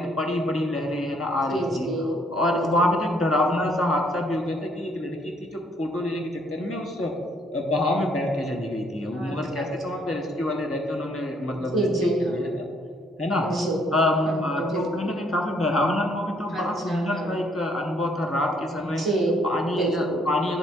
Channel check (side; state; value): both; normal; correlation 0.67